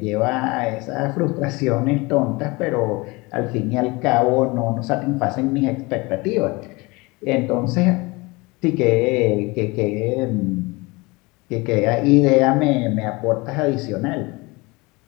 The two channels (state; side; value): quieter; right; 24.6 dB